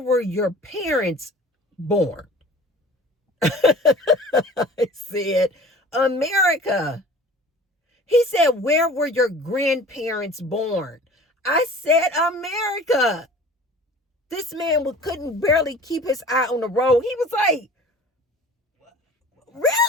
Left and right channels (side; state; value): both; normal; correlation 0.44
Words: your parents born? I said, America. He said, where were your grandparents born? I said, America. This man couldn't barely keep his eye on the road. He was like,